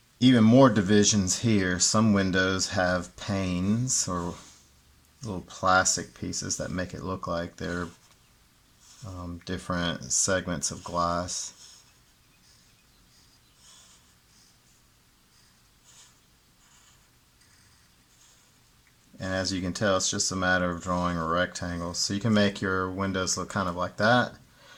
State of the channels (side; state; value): both; identical; correlation 1.00